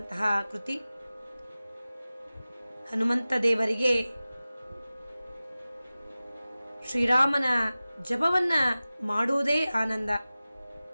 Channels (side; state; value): both; inverted; correlation -0.97